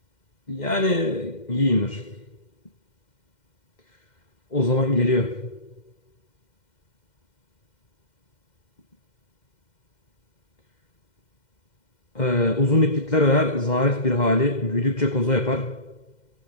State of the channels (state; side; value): late; right; 2.1 ms